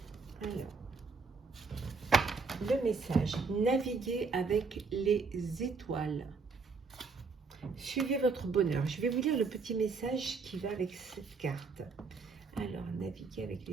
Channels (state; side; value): quieter; left; 4.6 dB